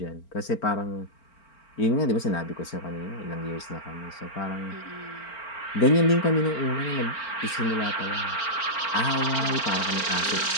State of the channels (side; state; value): right; late; 4.4 ms